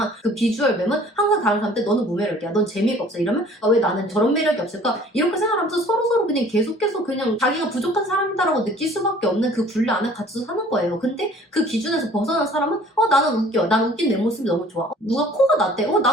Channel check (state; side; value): normal; both; correlation 0.52